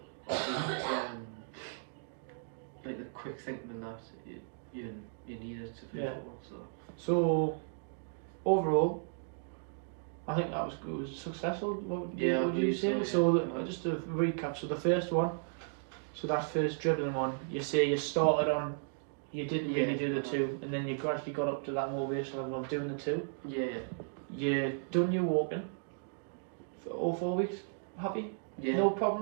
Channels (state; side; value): silent; left; digital silence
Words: obviously, like the quick thinking and that, you need it to play football. So overall, I think that was good. Was successful. What would you say? So just to recap, so the first one, so that first dribbling one, you say you started on, you didn't really do the 2, and then you gradually got up to that motivation level of doing the 2. Yeah. You done your walking for all 4 weeks. Happy? Yeah. No